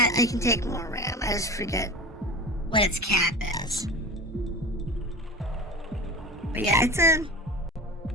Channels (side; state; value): both; normal; correlation 0.31